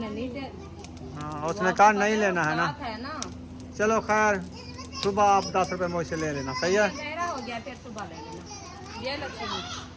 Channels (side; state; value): both; identical; correlation 1.00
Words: नहीं दे। हाँ उसने कहा नहीं लेना है ना। बात है ना। चलो खैर सुबह आप 10 रुपए मुझसे ले लेना। सही है। गहरा हो गया फिर सुबह ले लेना। ये